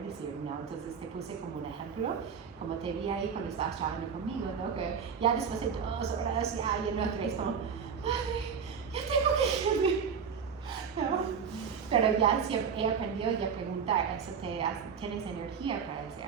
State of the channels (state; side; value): quieter; left; 6.6 dB